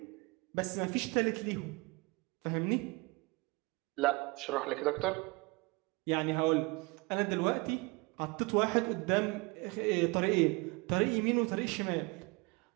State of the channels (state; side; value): quieter; left; 26.1 dB